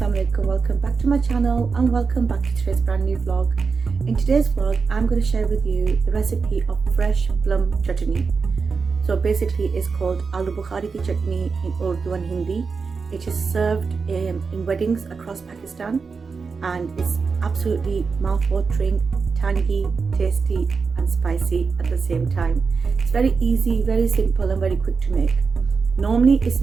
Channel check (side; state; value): left; quieter; 5.0 dB